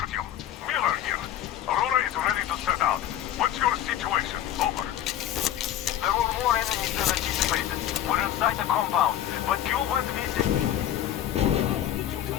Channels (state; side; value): quieter; right; 11.5 dB